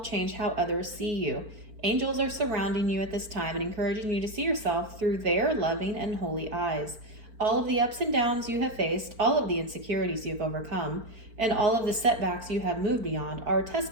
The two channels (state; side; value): late; left; 4.4 ms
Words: change how others see you. Angels are surrounding you at this time and encouraging you to see yourself through their loving and holy eyes. All of the ups and downs you have faced, all of the insecurities you've overcome, and all of the setbacks you have moved beyond are a